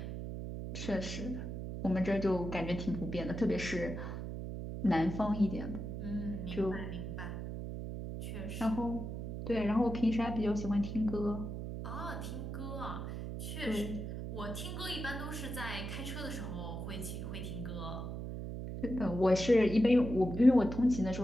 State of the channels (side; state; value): right; noise; hum, 6 dB below the sound